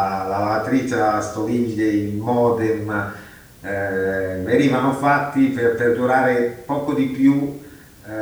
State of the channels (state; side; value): identical; both; correlation 1.00